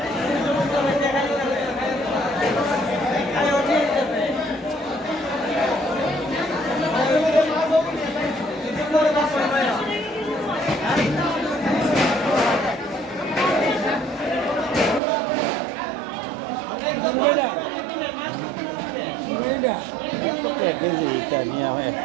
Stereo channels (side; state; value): left; drops out; at 15.0 s